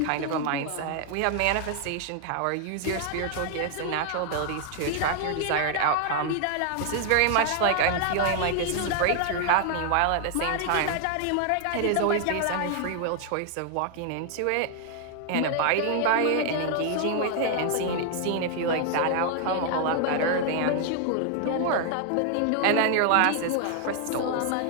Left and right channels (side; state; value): both; different; correlation 0.00